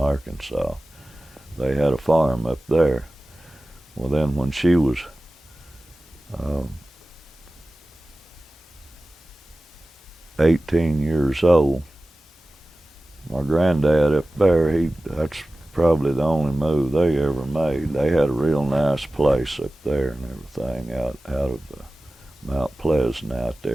they had a farm up there. Well, then when she was 18 years old, my granddad up there, that's probably the only move they ever made. They had a real nice place up there and everything out of Mount Pleasant out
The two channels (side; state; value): both; normal; correlation 0.96